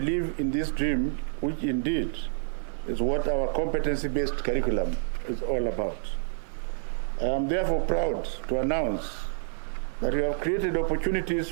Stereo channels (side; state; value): left; silent; digital silence